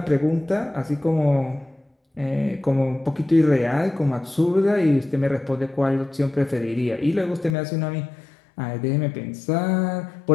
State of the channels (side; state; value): right; drops out; at 7.6 s